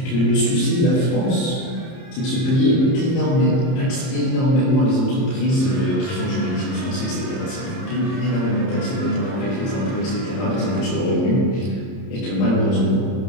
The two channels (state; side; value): late; right; 30 ms